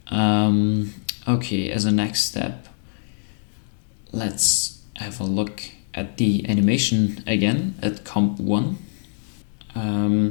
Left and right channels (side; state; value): right; silent; digital silence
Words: Okay, as a next step, let's have a look at the animation again at comp 1.